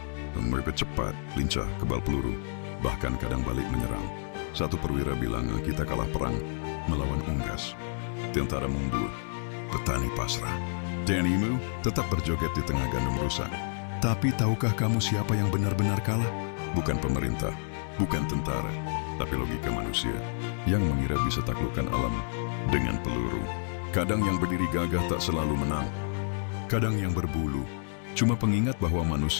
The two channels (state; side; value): silent; right; digital silence